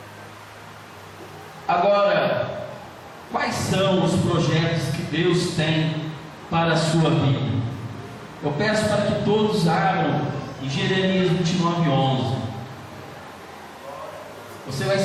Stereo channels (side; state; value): both; identical; correlation 1.00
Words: Agora, quais são os projetos que Deus tem para a sua vida? Eu peço para que todos abram em Jeremias 29:11. Você vai